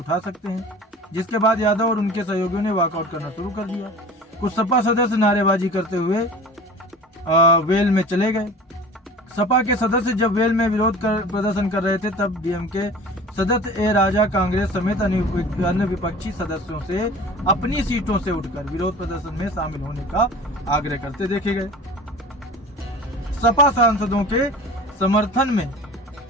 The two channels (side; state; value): both; normal; correlation 0.40